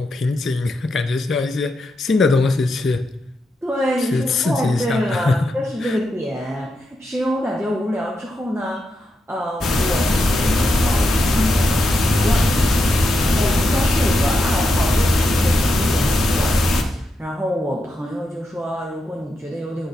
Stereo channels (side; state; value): both; normal; correlation 0.85